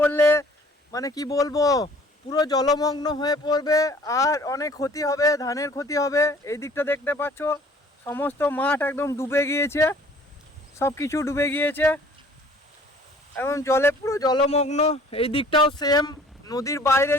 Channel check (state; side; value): normal; both; correlation 0.53